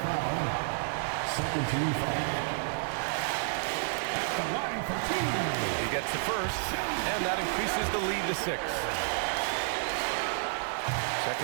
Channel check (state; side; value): silent; left; digital silence